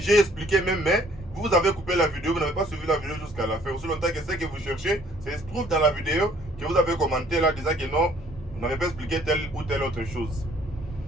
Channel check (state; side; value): normal; both; correlation 0.59